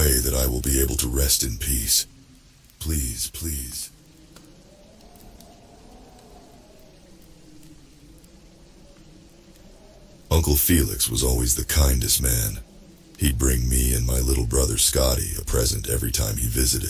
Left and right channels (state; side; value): identical; both; correlation 1.00